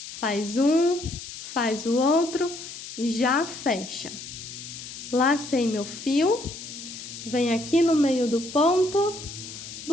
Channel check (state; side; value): noise; left; hiss, 11 dB below the sound